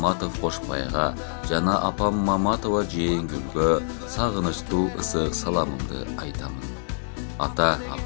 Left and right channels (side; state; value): right; silent; digital silence